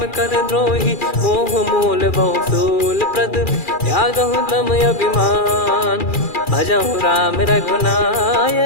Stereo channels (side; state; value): right; late; 2.4 ms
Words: कर द्रोही मोह मूल बहु सूल प्रद त्यागहु तम अभिमान भजहु राम